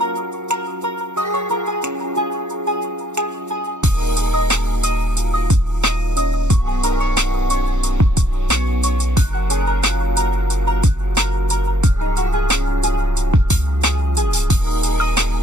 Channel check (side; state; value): left; late; 0.84 ms